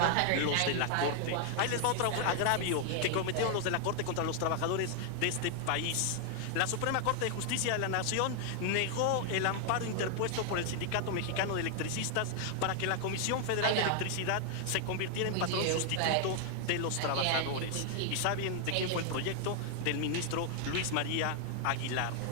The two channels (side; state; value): both; different; correlation 0.00